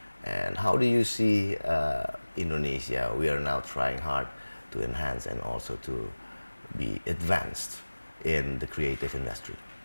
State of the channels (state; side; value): inverted; both; correlation -1.00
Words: And how do you see Indonesia? We are now trying hard to enhance and also to be advanced in the creative industry.